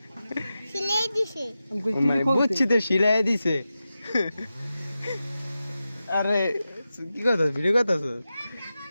সিলাই দিছে। মানে বুঝছি তো, সিলাই দিছে। আরে কি কথা, ভিডিও কথা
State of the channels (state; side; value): inverted; both; correlation -0.92